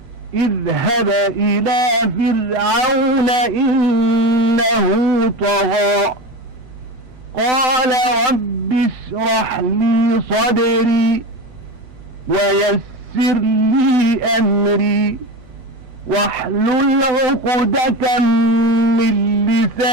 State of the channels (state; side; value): late; left; 8.5 ms